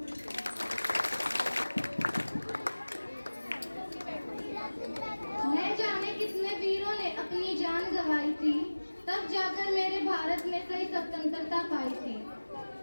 न जाने कितने वीरों ने अपनी जान गंवाई थी, तब जाकर मेरे भारत में सही स्वतंत्रता पाई थी।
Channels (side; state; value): both; inverted; correlation -1.00